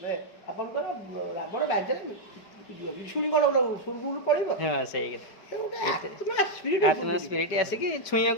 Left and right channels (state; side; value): late; right; 5.1 ms